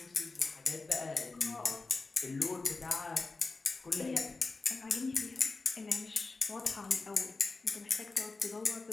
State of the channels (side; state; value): right; quieter; 3.7 dB